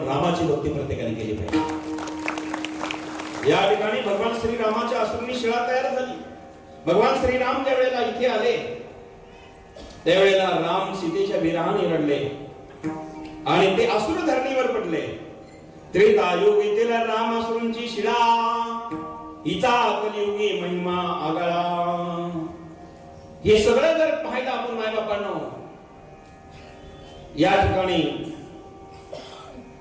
रामाची भक्ती प्रत्येकाने केली पाहिजे. या ठिकाणी भगवान श्रीरामाच्या असुरांनी शिळा तयार झाली. भगवान श्रीराम ज्या वेळेला इथे आले त्यावेळेला राम सीतेच्या विरहाने रडले आणि ते असुर धरणीवर पडले. त्रेतायुगीतील राम असुरांची शिळा, हिचा कलियुगी महिमा आगळा. हे सगळं जर पाहिलं आपण मायबापांनो, या ठिकाणी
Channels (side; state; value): both; identical; correlation 1.00